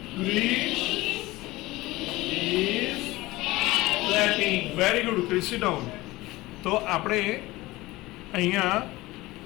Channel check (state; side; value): quieter; right; 19.6 dB